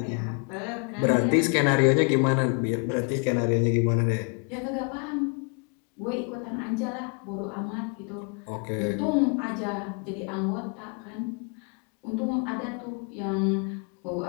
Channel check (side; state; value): right; quieter; 36.0 dB